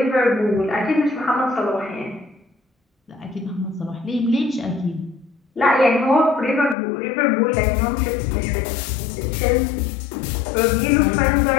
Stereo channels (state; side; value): drops out; right; at 6.8 s